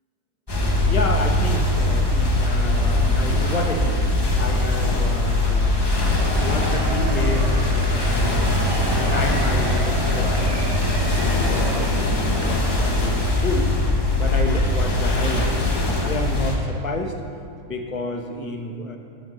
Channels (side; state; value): left; late; 1.2 ms